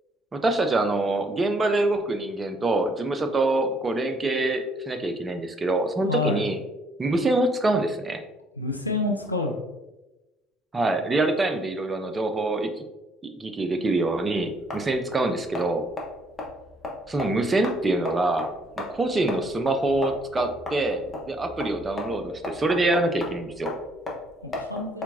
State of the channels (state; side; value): normal; both; correlation 0.66